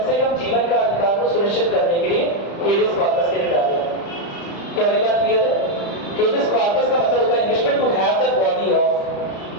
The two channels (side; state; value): right; late; 35 ms